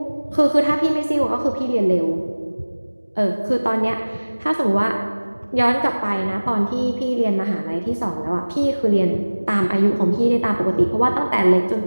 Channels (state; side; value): inverted; both; correlation -1.00